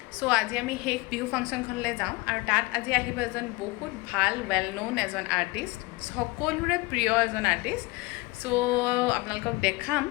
চ' আজি আমি সেই বিহু ফাংচনখনলৈ যাওঁ আৰু তাত আজি আহিব এজন বহুত ভাল ৱেল ন'ন এজন আৰ্টিষ্ট, সকলোৰে প্ৰিয় এজন আৰ্টিষ্ট। চ' আপোনালোকক দেখাম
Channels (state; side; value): quieter; right; 23.8 dB